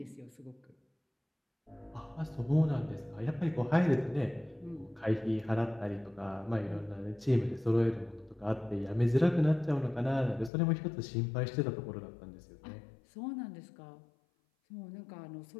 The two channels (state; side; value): drops out; right; at 10.5 s